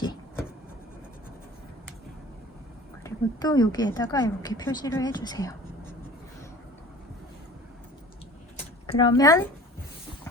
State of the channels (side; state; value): both; normal; correlation 0.43